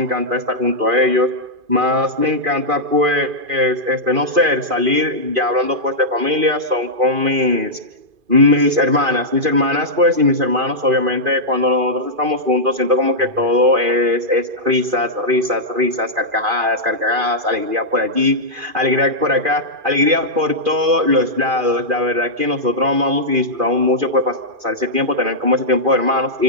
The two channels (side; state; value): left; late; 2.5 ms